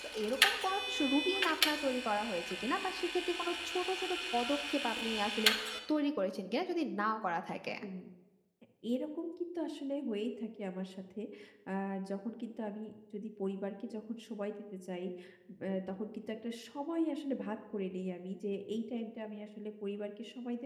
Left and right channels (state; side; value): identical; both; correlation 1.00